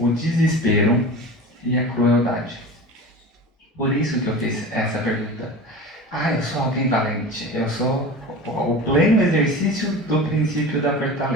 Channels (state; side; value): normal; both; correlation 0.34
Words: desespero e a crueldade. Por isso que eu fiz essa pergunta. Eu sou alguém valente, eu sou o pleno exercício do princípio da